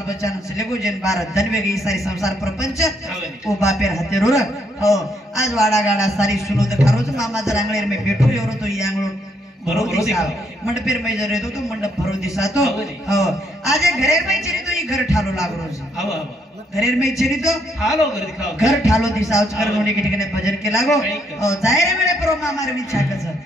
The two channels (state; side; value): normal; both; correlation 0.73